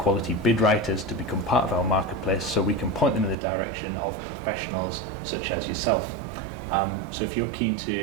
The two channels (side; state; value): left; drops out; at 3.4 s